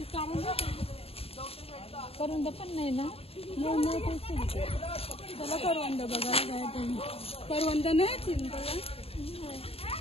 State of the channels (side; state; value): right; late; 0.28 ms